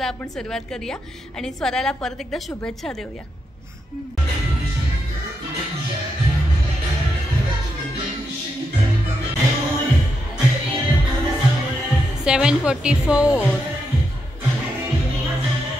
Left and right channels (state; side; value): normal; both; correlation 0.83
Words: आपण सुरुवात करूया आणि स्वराला परत एकदा शुभेच्छा देऊया। 7:44